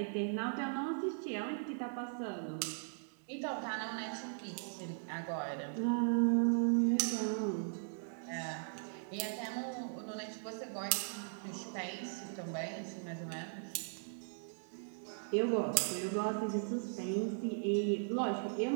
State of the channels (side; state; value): left; silent; digital silence